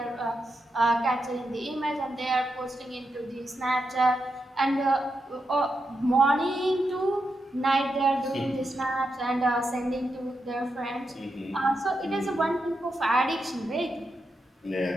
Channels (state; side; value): normal; both; correlation 0.86